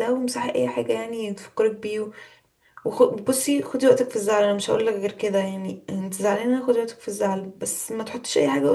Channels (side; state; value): both; identical; correlation 1.00